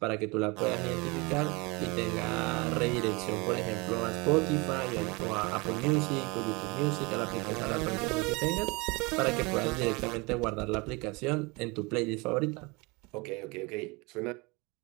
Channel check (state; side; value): quieter; left; 26.7 dB